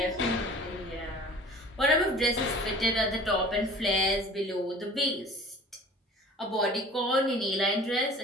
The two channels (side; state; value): both; normal; correlation 0.45